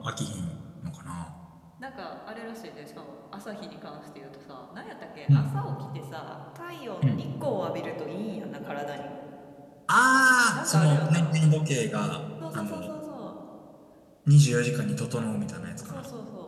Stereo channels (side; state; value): both; identical; correlation 1.00